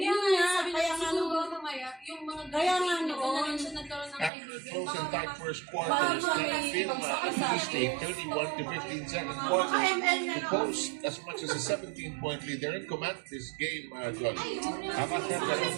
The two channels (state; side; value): drops out; left; at 4.3 s